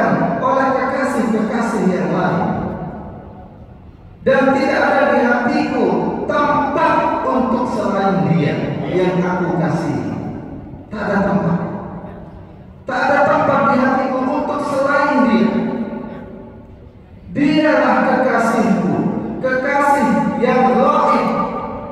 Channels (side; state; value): both; identical; correlation 1.00